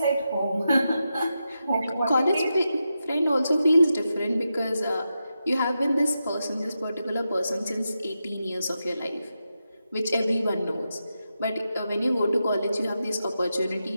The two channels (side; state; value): both; inverted; correlation -0.88